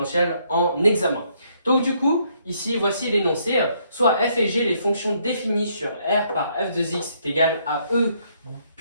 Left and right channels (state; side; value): inverted; both; correlation -0.70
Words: en examen. Donc du coup, ici voici l'énoncé, soit f et g, les fonctions définies sur r par f de x est égal à e